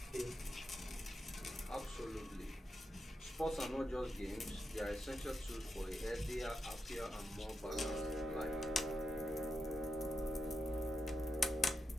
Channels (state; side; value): normal; both; correlation 0.86